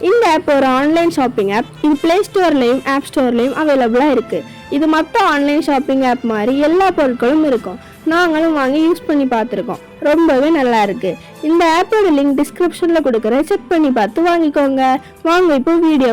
இந்த app ஒரு ஆன்லைன் ஷாப்பிங் ஆப். இது Play Storeலயும் App Storeலயும் அவைலபிளா இருக்கு. இது மற்ற ஆன்லைன் ஷாப்பிங் ஆப் மாதிரி எல்லா பொருட்களும் இருக்கும். நாங்களும் வாங்கி யூஸ் பண்ணி பார்த்துருக்கோம். ரொம்பவே நல்லா இருக்கு. இந்த ஆப்போட லிங்க் டிஸ்கிரிப்ஷன்ல கொடுக்குறேன். செக் பண்ணி பார்த்து வாங்கிக்கோங்க. வாங்க இப்போ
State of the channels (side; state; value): both; identical; correlation 1.00